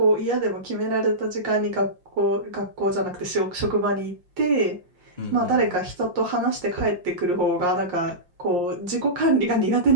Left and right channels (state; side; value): late; left; 5.7 ms